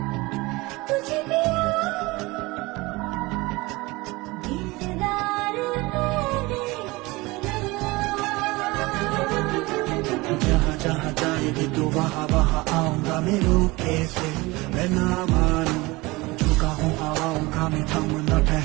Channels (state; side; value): quieter; left; 22.5 dB